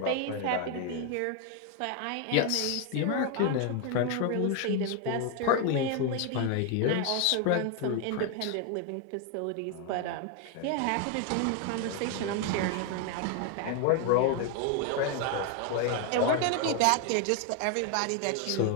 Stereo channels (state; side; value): different; both; correlation 0.01